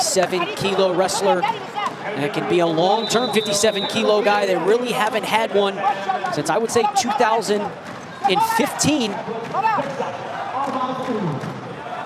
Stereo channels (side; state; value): both; identical; correlation 1.00